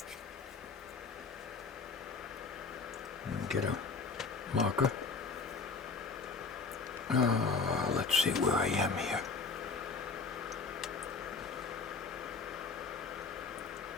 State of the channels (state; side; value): quieter; right; 4.6 dB